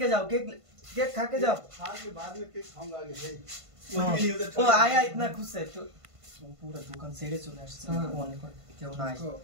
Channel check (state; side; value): late; left; 1.5 ms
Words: যাও কেক खा के जाओ खा के बाद में केक खाऊंगा आगे भाई ओ आया इतना खुश है तो पूरा दुकान सेड़े चले আসছে অনেক কেউ নাই